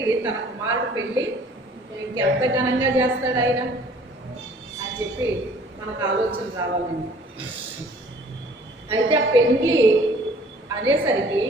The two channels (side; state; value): both; normal; correlation 0.54